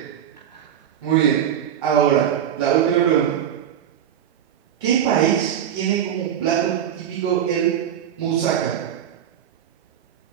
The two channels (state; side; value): quieter; left; 9.7 dB